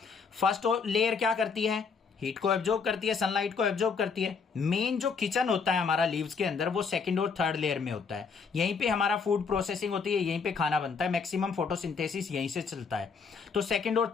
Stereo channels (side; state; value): right; quieter; 5.4 dB